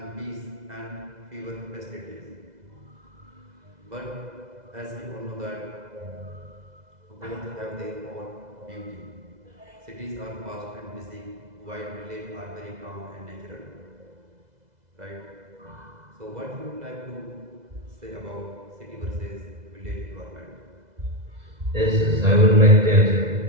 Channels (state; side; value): late; left; 2.0 ms